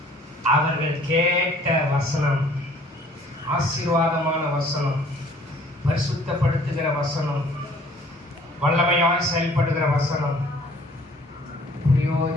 அவர்கள் கேட்ட வசனம் ஆசீர்வாதமான வசனம், பரிசுத்தப்படுத்துகிற வசனம், வல்லமையாய் செயல்படுகிற வசனம்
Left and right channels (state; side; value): normal; both; correlation 0.56